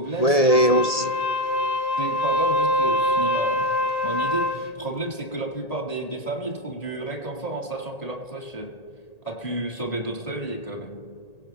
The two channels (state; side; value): late; right; 1.8 ms